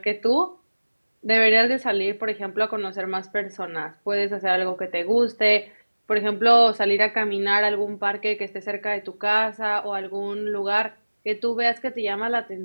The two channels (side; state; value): both; inverted; correlation -1.00